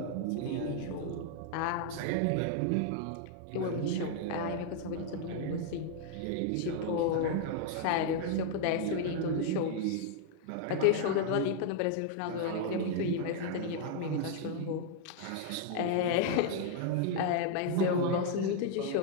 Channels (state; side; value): different; both; correlation 0.00